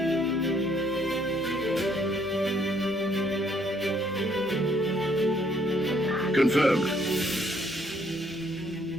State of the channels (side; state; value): both; normal; correlation 0.67